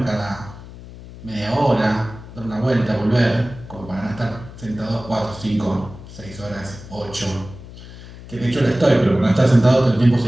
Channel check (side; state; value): left; noise; hum, 16 dB below the sound